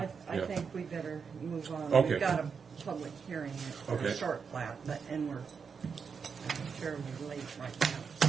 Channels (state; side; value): quieter; left; 6.0 dB